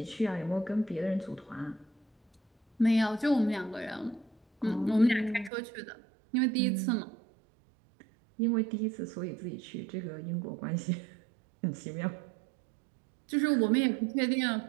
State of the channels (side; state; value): left; drops out; at 5.5 s